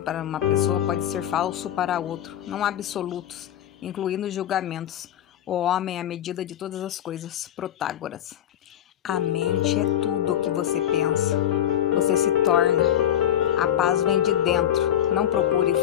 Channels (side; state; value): right; quieter; 10.9 dB